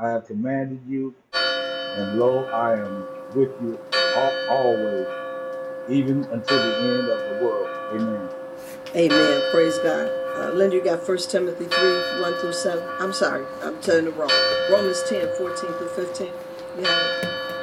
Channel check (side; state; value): both; identical; correlation 1.00